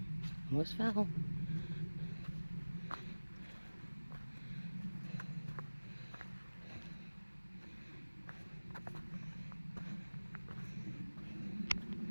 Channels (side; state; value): both; inverted; correlation -1.00